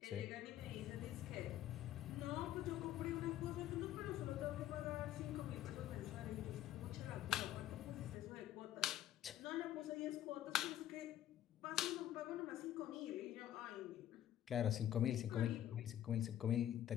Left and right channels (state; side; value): quieter; right; 12.1 dB